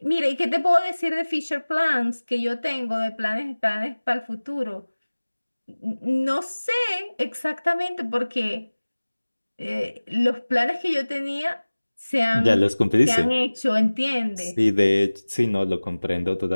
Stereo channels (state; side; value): inverted; both; correlation -1.00